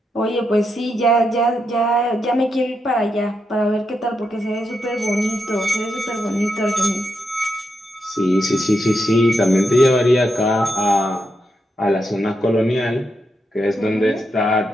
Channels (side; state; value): both; normal; correlation 0.83